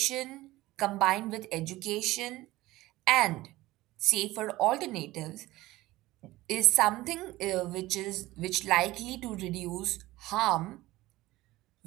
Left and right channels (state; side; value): quieter; left; 17.9 dB